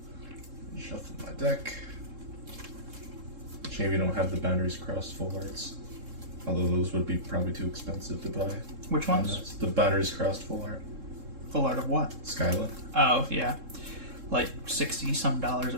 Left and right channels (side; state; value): left; late; 3.7 ms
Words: Shuffle my deck. Shame you don't have the Boundaries Crossed full arts. Although those would be probably too expensive to buy. Which ones? The Boundaries Crossed full art. Full art of what? Skyla. Oh, yeah. Like $60-some a